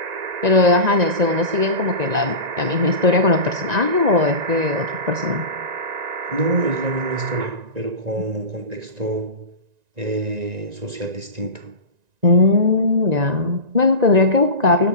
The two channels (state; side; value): late; left; 1.9 ms